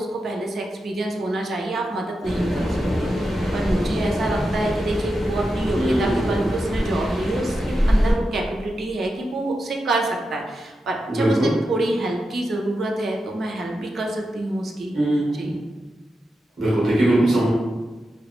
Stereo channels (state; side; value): normal; both; correlation 0.89